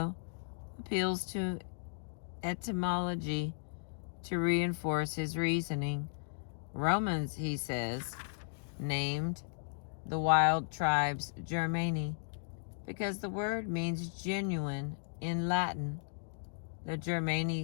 appeals to etymology to reinforce his reasoning. Romans, he says, named the wild tribes Germani because the word means genuine in Latin. The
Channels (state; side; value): silent; right; digital silence